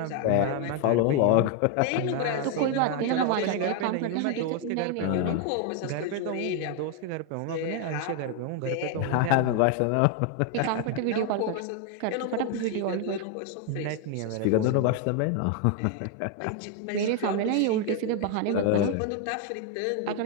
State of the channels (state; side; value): different; both; correlation 0.01